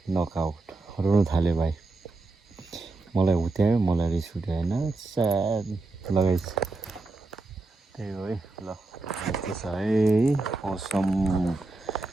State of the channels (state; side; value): quieter; left; 3.3 dB